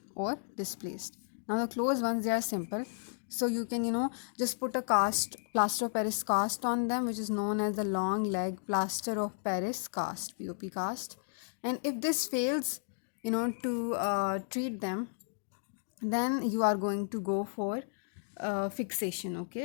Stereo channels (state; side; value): silent; right; digital silence